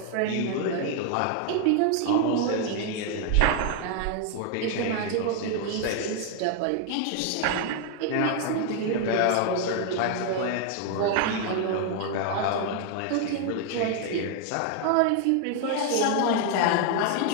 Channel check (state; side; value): different; both; correlation 0.00